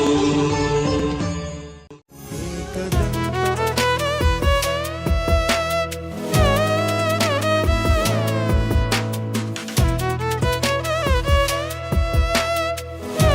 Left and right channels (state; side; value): identical; both; correlation 1.00